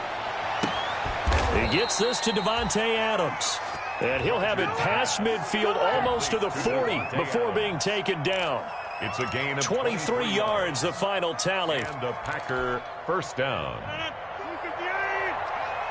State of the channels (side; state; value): both; identical; correlation 1.00